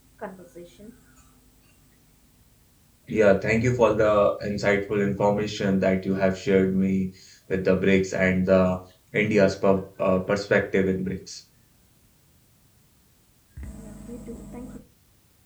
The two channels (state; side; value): identical; both; correlation 1.00